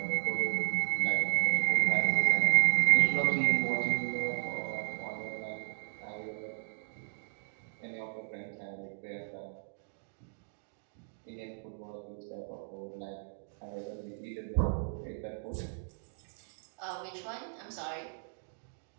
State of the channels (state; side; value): silent; left; digital silence